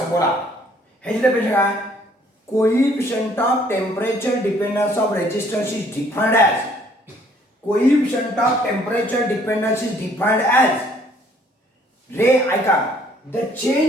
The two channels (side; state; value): both; normal; correlation 0.61